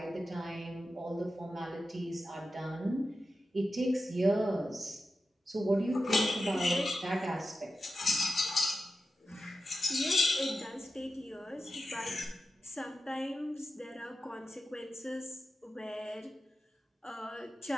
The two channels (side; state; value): both; normal; correlation 0.91